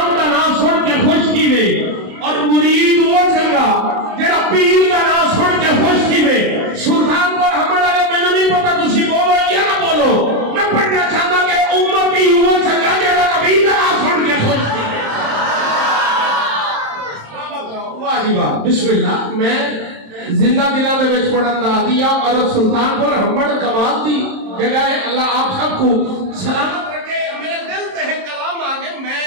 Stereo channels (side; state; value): left; late; 27 ms